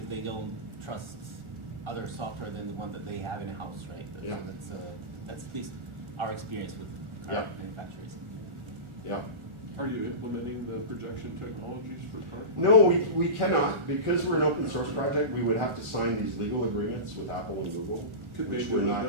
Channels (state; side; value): late; left; 1.4 ms